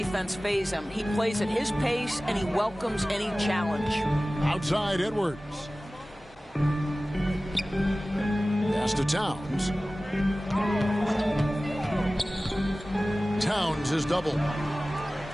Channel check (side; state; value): both; normal; correlation 0.97